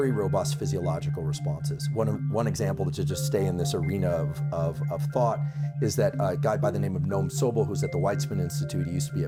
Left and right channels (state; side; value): identical; both; correlation 1.00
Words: robust physiological responses. One example to just stay in this arena of thought is that a guy by the name of Noam Sobel, who's at the Weizmann Institute. He used to be